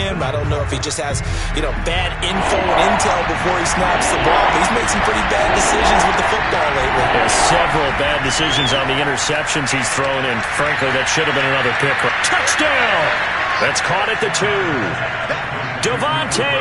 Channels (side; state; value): both; identical; correlation 1.00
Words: I don't know if he just has, bad info and intel before he snaps the ball. But he's made some pretty bad decisions with the football lately. There's several bad decisions on the interceptions he's thrown, and frankly, that should have been another pick. Touchdown! That's caught at the 2. Davante